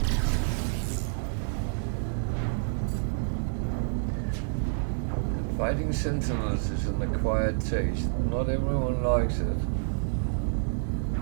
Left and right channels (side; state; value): left; silent; digital silence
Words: And fighting sentinels is an acquired taste. Not everyone likes it.